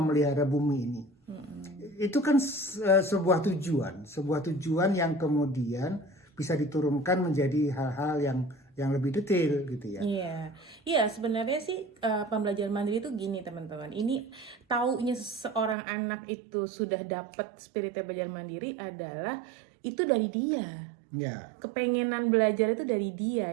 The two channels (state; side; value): drops out; left; at 15.8 s